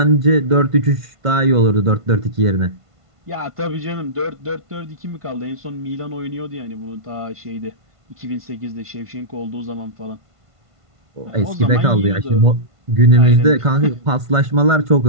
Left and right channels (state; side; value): late; left; 1.5 ms